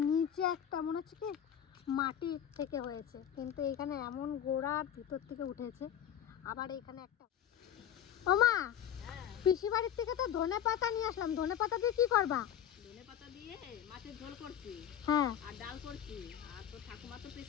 নিচে একটা মনে হচ্ছে কি মাটি থেকে হয়েছে, কিন্তু এখানে এমন গোড়ার ভিতর থেকে উঠেছে। আবার এখানে একটা, ও মা, পিসি বাড়ির থেকে তো ধনে পাতা নিয়ে আসলাম, ধনে পাতা দিয়ে কি করবা? ধনেপাতা দিয়ে মাছের ঝোল করছি, হ্যাঁ আর ডাল করছি। আর তো ঠাকুমা তো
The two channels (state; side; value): quieter; right; 9.9 dB